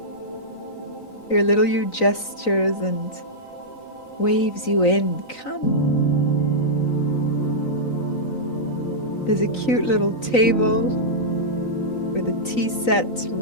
Your little you gestures and waves you in. Come. There's a cute little table with a tea set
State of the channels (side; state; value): right; late; 3.9 ms